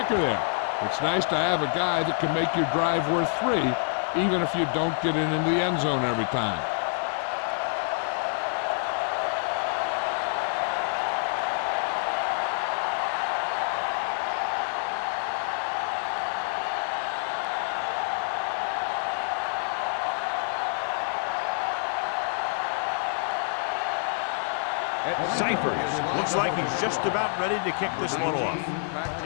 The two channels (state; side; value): silent; right; 60 dB below the other